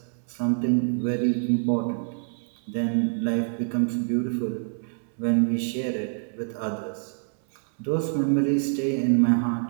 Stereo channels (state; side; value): silent; left; 61 dB below the other